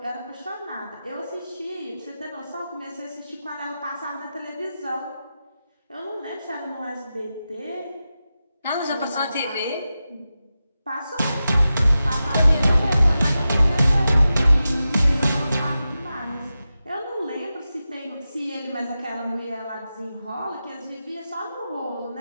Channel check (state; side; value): inverted; both; correlation -0.92